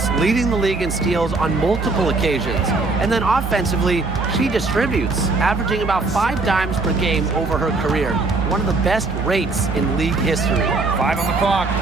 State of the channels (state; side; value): quieter; left; 3.6 dB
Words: leading the league in steals on multiple occasions. And then offensively, she distributes, averaging about 5 dimes per game over her career. One of the best rates in league history. 5 on the clock.